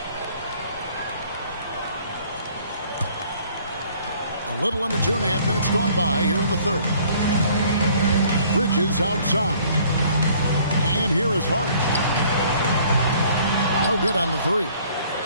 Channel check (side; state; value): both; inverted; correlation -0.57